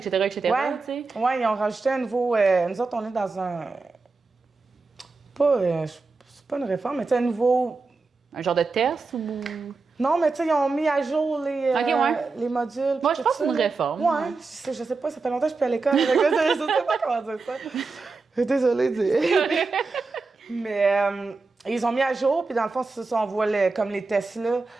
tu sais? Ouais, ils ont rajouté un nouveau... nous autres, on est dans un... c'est pas une réforme, mais tu sais, un nouveau... Un genre de test ou... Non, mais tu sais, ils ont mis à jour les modules. Moi, je pense que c'est une réforme. Ouais, je sais pas, ça fait longtemps que je suis plus à l'école. Je sais pas comment dire ça. Désolée de dire. Mais... ils ont mis à jour, puis dans le fond, c'est ça, on voit comme les Tesla.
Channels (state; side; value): quieter; left; 4.0 dB